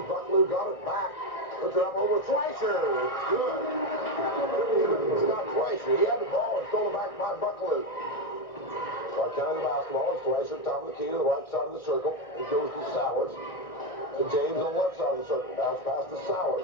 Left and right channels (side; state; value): right; late; 1.6 ms